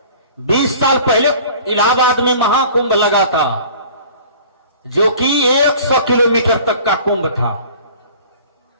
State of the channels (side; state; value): both; inverted; correlation -0.46